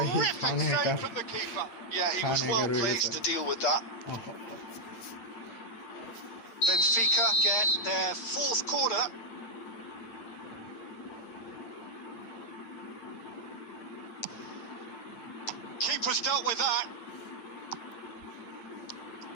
save from the keeper. Yeah, he was well placed to deal with that. Benfica get their fourth corner. Keeper's dealt with that.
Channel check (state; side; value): late; right; 8.8 ms